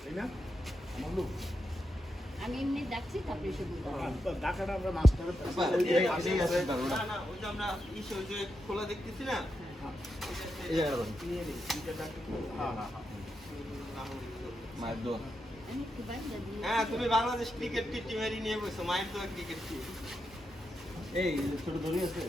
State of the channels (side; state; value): both; normal; correlation 0.86